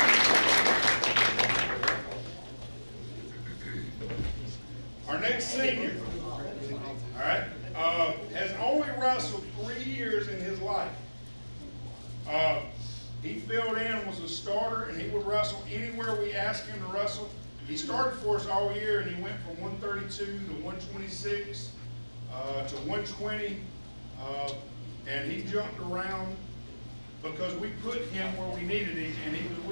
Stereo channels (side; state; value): both; inverted; correlation -1.00